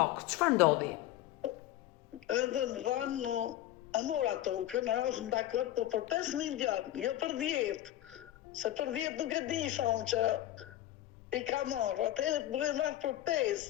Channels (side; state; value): right; quieter; 13.7 dB